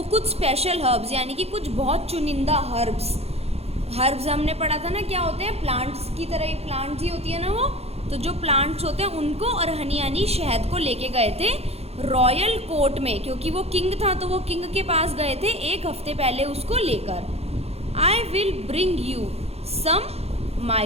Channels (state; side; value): late; left; 0.30 ms